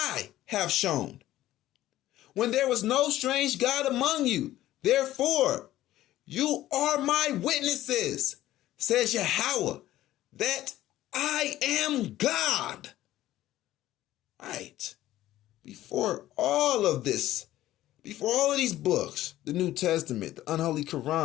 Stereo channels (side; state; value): right; quieter; 14.5 dB